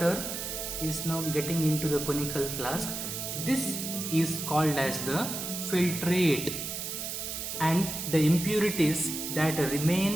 is now getting into the conical flask. This is called as the filtrate, and the impurities that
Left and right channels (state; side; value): noise; right; hiss, 5 dB below the sound